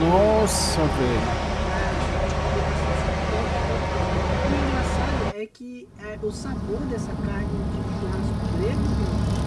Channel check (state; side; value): identical; both; correlation 1.00